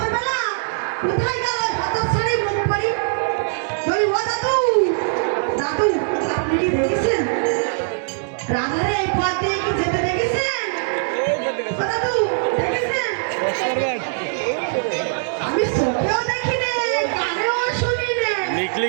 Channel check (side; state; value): left; silent; digital silence